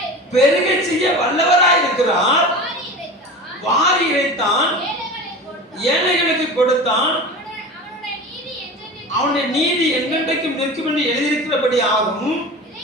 பெருக செய்ய வல்லவராய் இருக்கிறார். வாரி இறைத்தான், ஏழைகளுக்கு கொடுத்தான், அவனுடைய நீதி என்றென்றைக்கும் நிற்கும் என்று எழுதியிருக்கிறபடி ஆகும்.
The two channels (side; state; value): both; normal; correlation 0.33